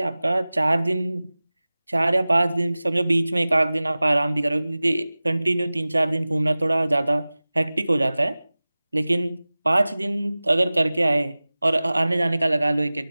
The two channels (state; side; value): inverted; both; correlation -0.98